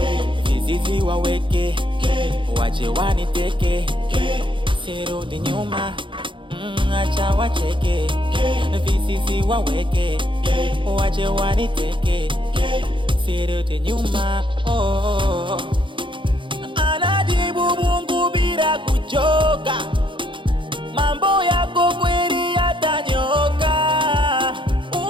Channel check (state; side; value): late; left; 0.24 ms